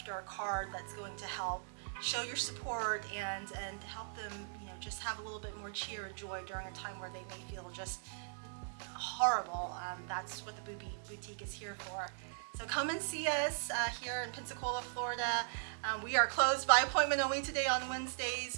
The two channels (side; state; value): left; silent; 52 dB below the other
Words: or a card that's going to help show your support and help them, just have a little bit more cheer and joy during a time where they may feel just horrible, that's what the Boobie Boutique is here for. So come and see us here in Pensacola, Florida. We are closed by appointment only today on Wednesdays,